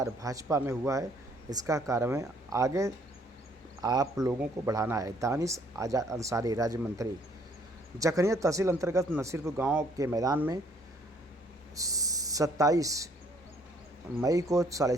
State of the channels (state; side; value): normal; both; correlation 0.63